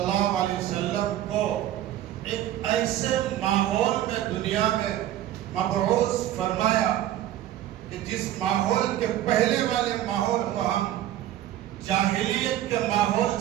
علیہ وسلم کو ایک ایسے ماحول میں دنیا میں مبعوث فرمایا کہ جس ماحول کے پہلے والے ماحول کو ہم جاہلیت کے ماحول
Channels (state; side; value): quieter; left; 12.8 dB